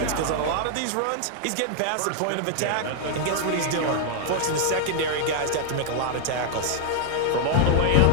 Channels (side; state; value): both; different; correlation 0.00